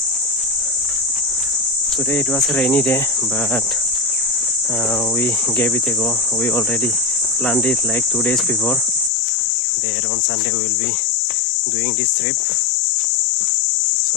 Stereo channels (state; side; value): drops out; right; at 9.1 s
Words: Today it was a rainy day, but we gave it a go. We already planned it like 2 days before. There on Sunday we will be doing this trip.